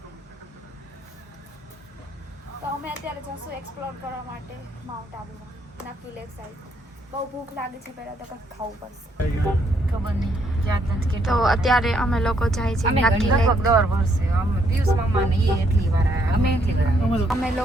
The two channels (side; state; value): both; normal; correlation 0.72